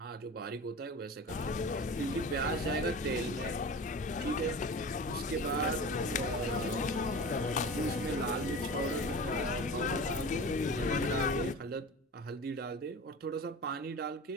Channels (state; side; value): normal; both; correlation 0.35